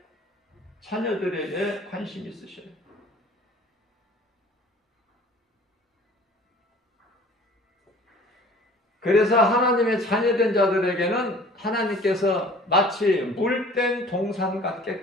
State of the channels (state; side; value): normal; both; correlation 0.48